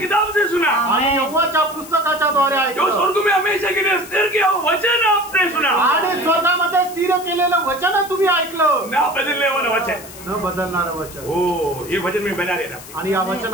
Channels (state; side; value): noise; left; hiss, 16 dB below the sound